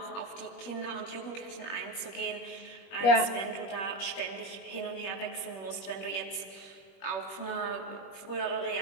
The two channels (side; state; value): right; late; 21 ms